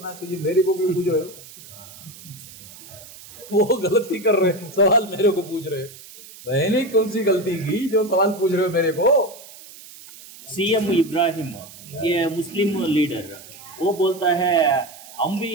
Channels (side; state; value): right; noise; hiss, 18 dB below the sound